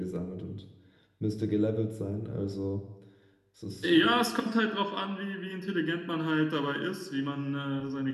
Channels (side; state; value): both; identical; correlation 1.00